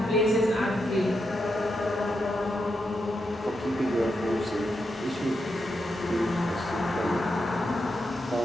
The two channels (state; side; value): normal; both; correlation 0.84